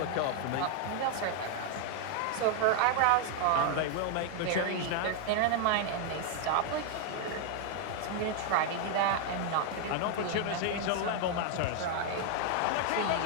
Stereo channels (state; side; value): different; both; correlation 0.00